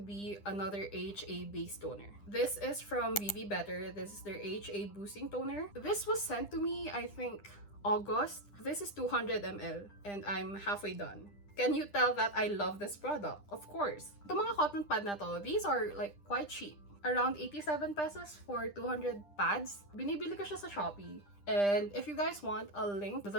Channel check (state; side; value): late; right; 9.9 ms